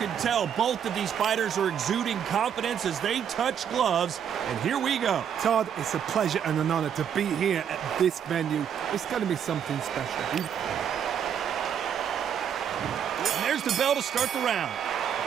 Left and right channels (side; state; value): left; quieter; 8.5 dB